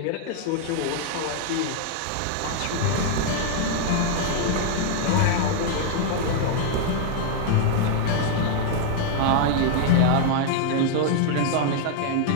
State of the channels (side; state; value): both; different; correlation 0.00